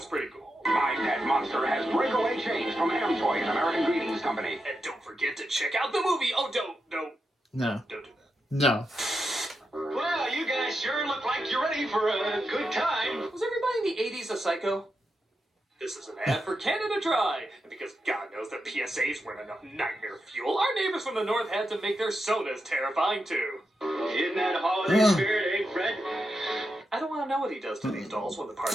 pretty cool. My pet monster has breakaway chains from Toy and American Greetings Company. And don't forget to check out the movie. Oh, don't do No, that. no. Well, you guys sure look like you're ready for a good time. Was everybody in the 80s a psycho? This is an ad for Canada Dry. And because God knows that PSAs weren't enough nightmare fuel, our neighbors from the north had to make their sodas terrifying too. In that holiday Yeah. spirit, eh, Fred? I don't want to know what he does to these dolls when the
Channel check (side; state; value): both; normal; correlation 0.87